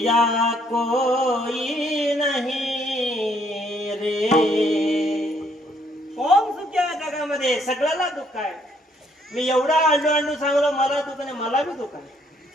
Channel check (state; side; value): normal; both; correlation 0.67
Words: कोई नाही रे. कोण सुखी आहे जगामध्ये? सगळ्याला दुःख आहे. मी एवढा आंडू सांगलो मला दुःख नाही, मला बी दुःख आहे.